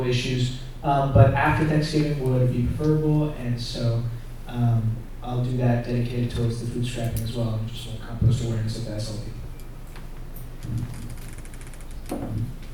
issues. But after Thanksgiving would be preferable, and so I'll do that dedicated towards the food scrapping as well, and just compost awareness of the SLP.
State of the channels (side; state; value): both; identical; correlation 1.00